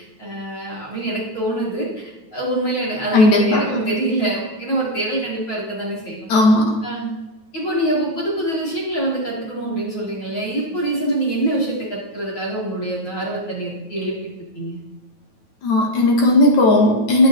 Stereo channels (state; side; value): late; right; 9.2 ms